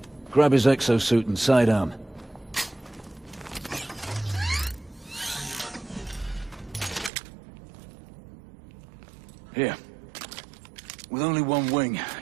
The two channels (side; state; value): left; drops out; at 7.1 s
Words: Grab his exo-suit and sidearm. Here. With only one wing,